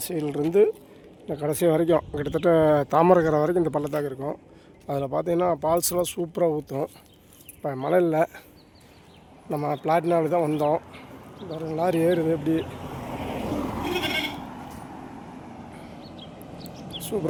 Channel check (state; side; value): identical; both; correlation 1.00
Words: இந்த கடைசி வரைக்கும் கிட்டத்தட்ட தாமரைக்கரை வரைக்கும் இந்த பள்ளத்தாக்கு இருக்கும். அதில் பார்த்தீங்கன்னா ஃபால்ஸ்லாம் சூப்பராக ஊற்றும். இப்போ மழை இல்லை, நம்ம பிளாட்டினாவில் தான் வந்தோம். பாருங்கள் லாரி ஏறுது, எப்படி